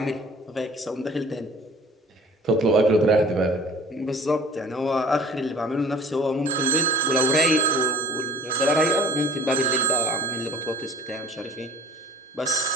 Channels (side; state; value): both; normal; correlation 0.41